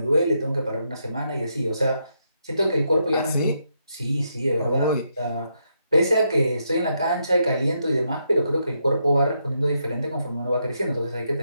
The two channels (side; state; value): both; inverted; correlation -0.80